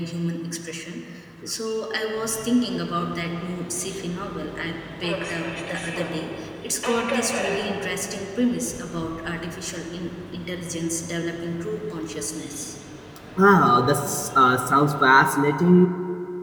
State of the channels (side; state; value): both; identical; correlation 1.00